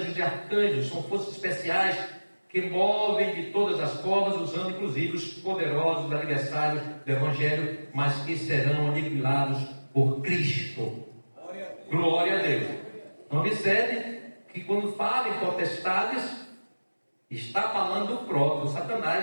e arcanjos, são forças especiais que movem de todas as formas, usando inclusive os poderosos adversários do Evangelho, mas que serão aniquilados por Cristo. Glória a Deus. Então observe que quando fala em potestades, está falando do próprio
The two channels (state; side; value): inverted; both; correlation -1.00